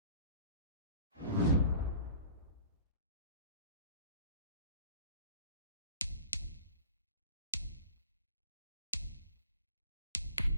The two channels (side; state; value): both; inverted; correlation -0.44